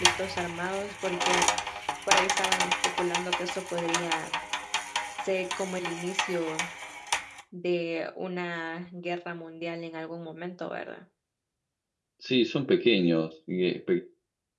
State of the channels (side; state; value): both; identical; correlation 1.00